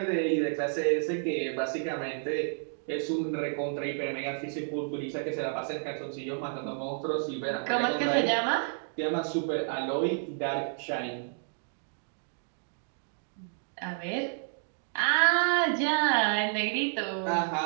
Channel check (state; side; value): silent; left; digital silence